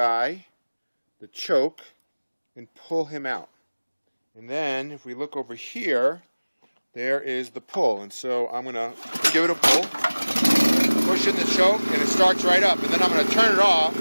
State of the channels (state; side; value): inverted; both; correlation -1.00